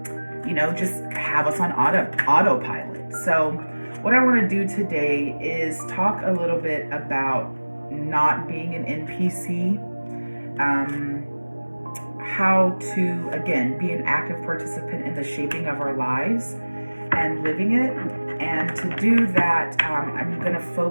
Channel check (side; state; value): both; inverted; correlation -1.00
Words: just have us on autopilot. So what I want to do today is talk a little bit about not being an NPC, how to, again, be an active participant in the shaping of our lives and living it. And to do that, I'm going to